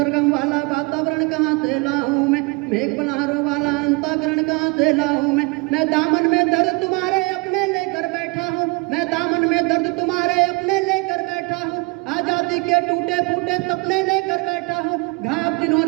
वाला वातावरण कहाँ से लाऊं मैं, मेघ बल्हारों वाला अंतःकरण कहाँ से लाऊं मैं दामन में दर्द तुम्हारे अपने लेकर बैठा हूँ, मैं दामन में दर्द तुम्हारे अपने लेकर बैठा हूँ। आजादी के टूटे फूटे सपने लेकर बैठा हूँ। घाव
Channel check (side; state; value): left; quieter; 28.4 dB